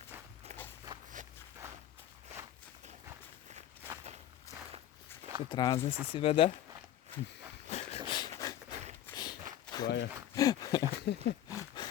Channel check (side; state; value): right; quieter; 11.9 dB